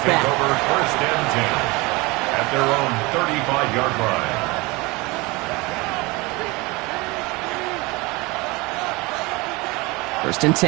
Over 1st and 10 at their own 35-yard line. First and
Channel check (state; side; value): quieter; left; 24.1 dB